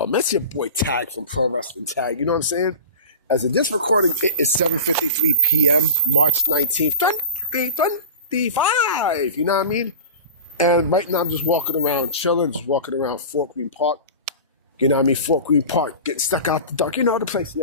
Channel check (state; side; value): inverted; both; correlation -0.30